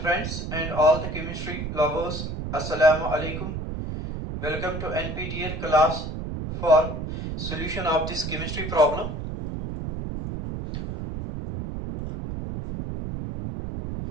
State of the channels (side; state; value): right; noise; rumble, 5 dB below the sound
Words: and all the chemistry lovers, Assalamu alaikum. Welcome to NPTEL class for solution of this chemistry problem.